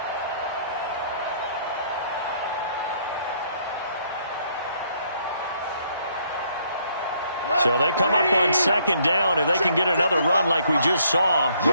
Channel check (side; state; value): both; inverted; correlation -0.67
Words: So they come up on 2nd down. If they can get another run like we just saw,